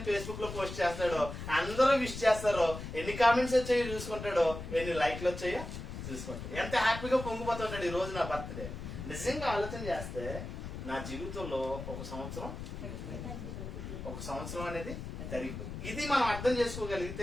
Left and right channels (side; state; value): left; noise; rumble, 8 dB below the sound